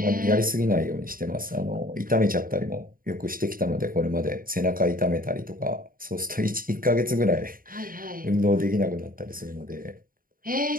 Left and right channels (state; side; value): late; left; 0.41 ms